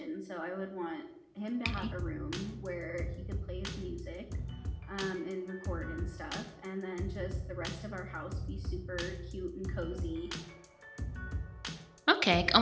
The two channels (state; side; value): identical; both; correlation 1.00